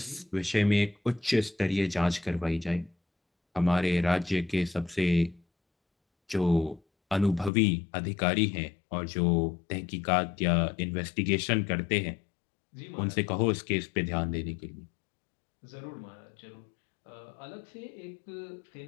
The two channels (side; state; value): right; drops out; at 7.5 s